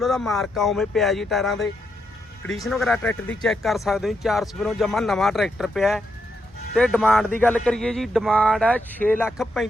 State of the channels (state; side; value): normal; both; correlation 0.81